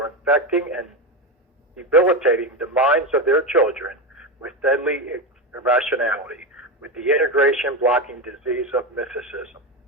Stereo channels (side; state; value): both; normal; correlation 0.15